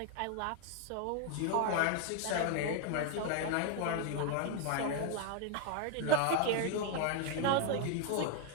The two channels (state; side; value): different; both; correlation 0.01